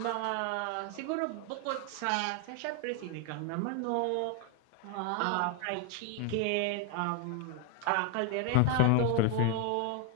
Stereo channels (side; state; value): both; different; correlation 0.01